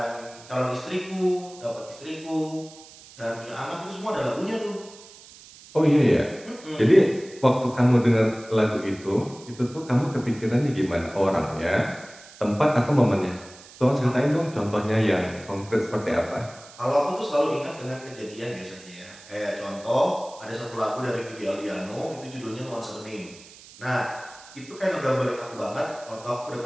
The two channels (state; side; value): noise; right; hiss, 20 dB below the sound